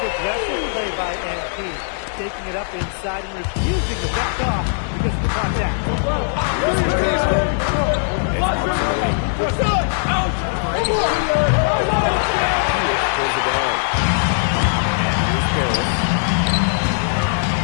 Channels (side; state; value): right; silent; digital silence